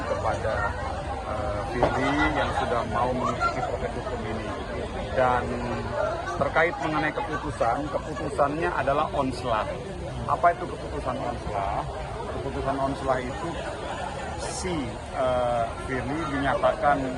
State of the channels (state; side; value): identical; both; correlation 1.00